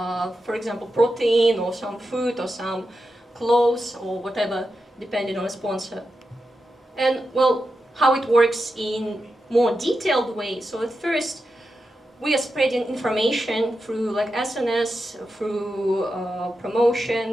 example, protein or some food or some clothes or whatever, depending on a sponsor. And well, how it works in more detailed way. So at first, we are spreading information through SNS, through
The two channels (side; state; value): both; normal; correlation 0.89